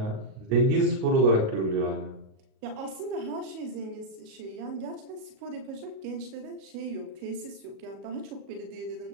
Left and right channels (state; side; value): late; left; 37 ms